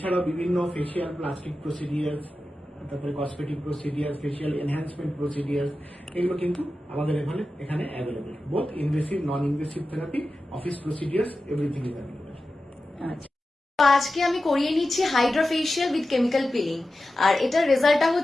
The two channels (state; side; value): normal; both; correlation 0.93